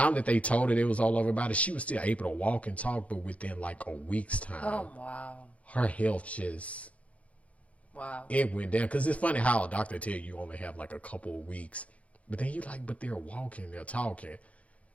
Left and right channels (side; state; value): right; late; 0.065 ms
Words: that they told her it was all over her body, she was still able to walk and talk, but within like a week's time. Oh, wow. Her health just, it went down. Because it's funny how a doctor tell you only have like a couple of weeks. But then you like, but they're walking, they're talking.